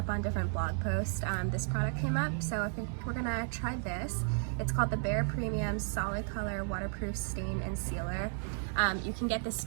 on different blog posts, this product came up, so I think we're gonna try this. It's called the Bare Premium Solid Color Waterproof Stain and Sealer. You can get this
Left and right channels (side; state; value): left; silent; 55 dB below the other